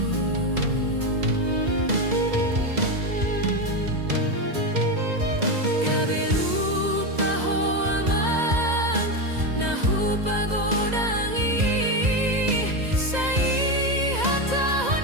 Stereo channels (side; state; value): left; late; 2.0 ms